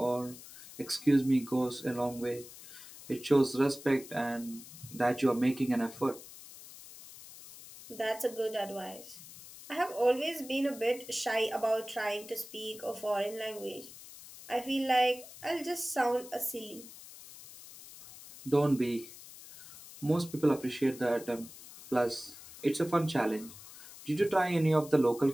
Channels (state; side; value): noise; left; hiss, 17 dB below the sound